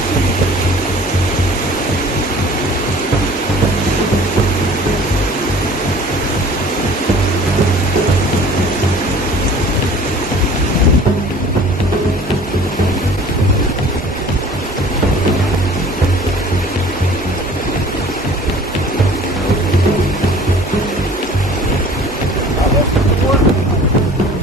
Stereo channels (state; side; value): normal; both; correlation 0.48